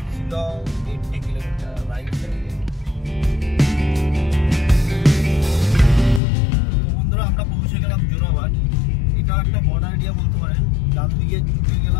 Shillong 80 kilometre right সাইডে। বন্ধুরা আমরা পৌঁছে গেলাম জোরাবাট। এটা একটা বর্ডার এরিয়া বলতে পারেন। ডান দিকে ঢুকে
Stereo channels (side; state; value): right; drops out; at 6.2 s